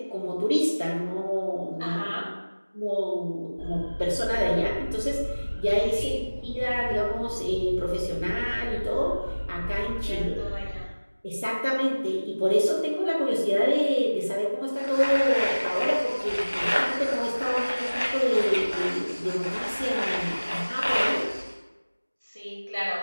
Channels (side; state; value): both; inverted; correlation -1.00